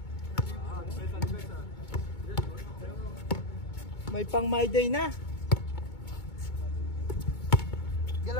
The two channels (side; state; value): right; late; 2.2 ms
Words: May pang my day na.